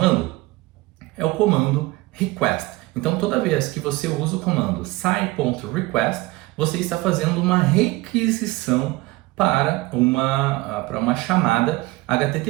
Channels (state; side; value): quieter; left; 20.8 dB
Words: é o comando request. Então, toda vez que você usa o comando sci.request, você está fazendo uma requisição para uma chamada